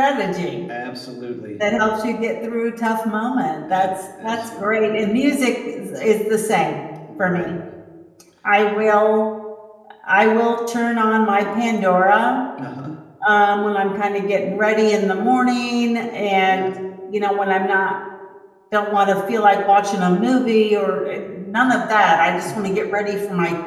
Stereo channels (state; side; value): identical; both; correlation 1.00